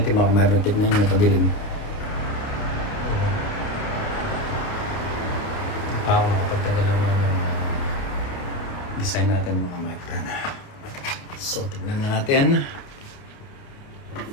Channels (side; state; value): right; late; 29 ms